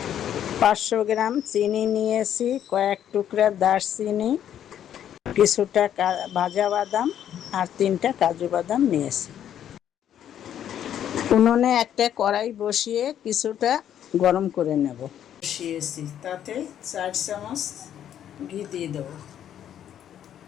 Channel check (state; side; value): quieter; right; 10.2 dB